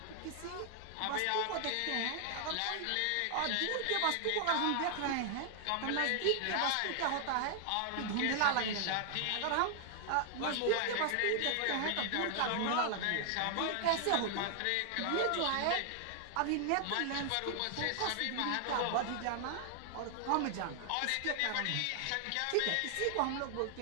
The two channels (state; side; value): different; both; correlation 0.00